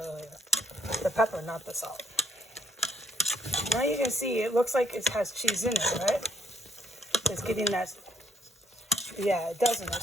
The pepper, not the salt. Now you can see it looks like it has cheese in it, right? It's getting that, yeah, it doesn't.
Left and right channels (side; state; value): both; normal; correlation 0.69